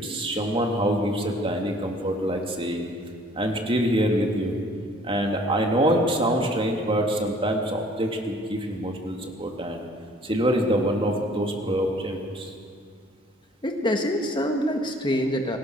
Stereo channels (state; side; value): normal; both; correlation 0.56